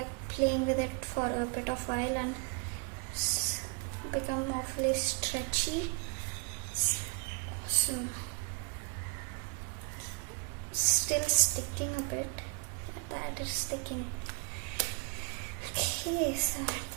playing with it for a bit of while and it's become awfully stretchy. It's awesome. Still sticking a bit. That is sticking. Okay, so at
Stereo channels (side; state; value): left; quieter; 34.2 dB